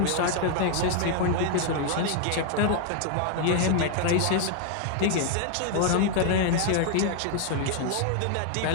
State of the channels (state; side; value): different; both; correlation 0.00